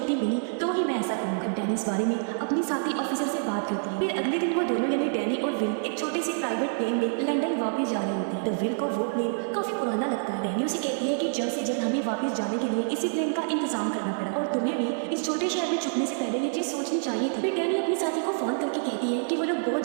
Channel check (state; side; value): silent; left; digital silence